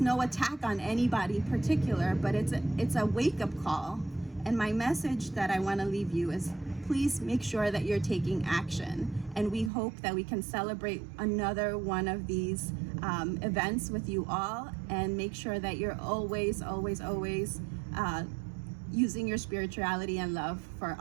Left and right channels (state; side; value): drops out; left; at 9.7 s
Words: no attack on anybody particular, but it's a wake-up call. And my message that I want to leave you is please make sure that you're taking action And we hope that we can celebrate another one of these events with you all, and make sure that you're always, always, always using your spirituality and love for